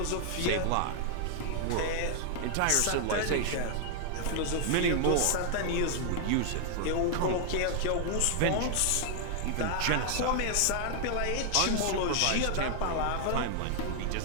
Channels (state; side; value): different; both; correlation 0.00